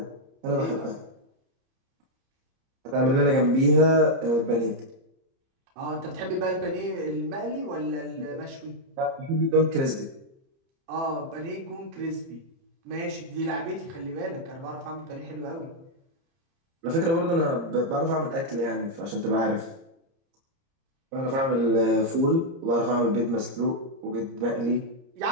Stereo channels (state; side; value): late; left; 30 ms